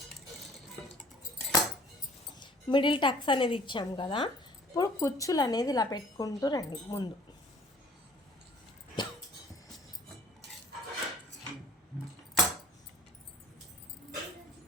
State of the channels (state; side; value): normal; both; correlation 0.53